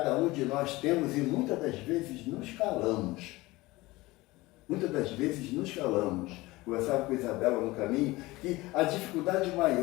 um de nós temos e muitas das vezes nos calamos. Muitas das vezes nos calamos. Conversava com a Isabela no caminho que a dificuldade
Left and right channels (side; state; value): right; quieter; 20.4 dB